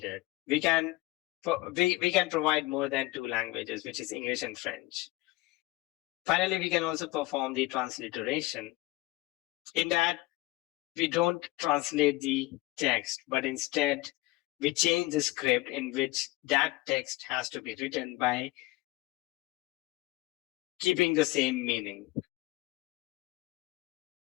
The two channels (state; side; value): quieter; right; 19.9 dB